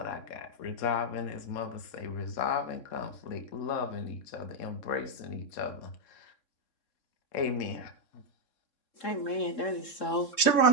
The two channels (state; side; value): late; right; 3.7 ms